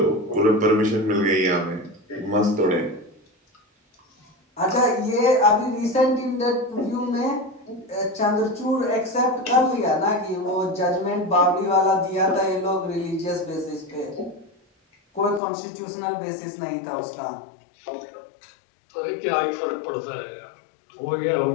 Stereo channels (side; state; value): right; drops out; at 15.4 s